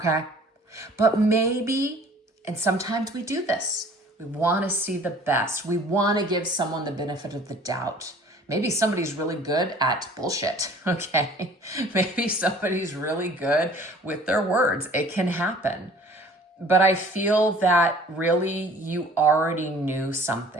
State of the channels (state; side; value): normal; both; correlation 0.50